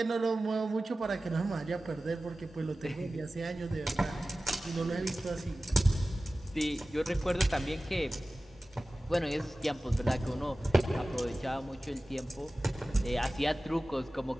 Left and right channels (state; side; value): normal; both; correlation 0.96